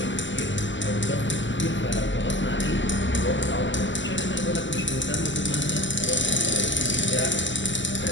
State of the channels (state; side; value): late; right; 0.54 ms